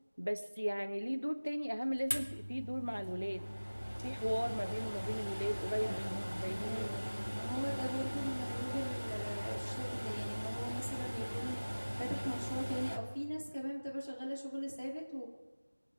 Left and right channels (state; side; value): inverted; both; correlation -1.00